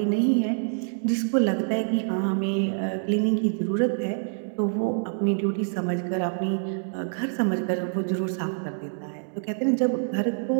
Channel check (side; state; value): left; silent; digital silence